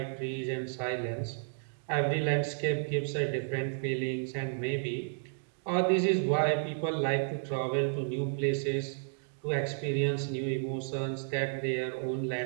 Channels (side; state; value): left; silent; digital silence